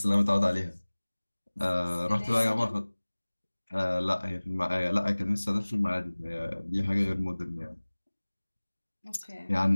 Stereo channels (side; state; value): both; inverted; correlation -1.00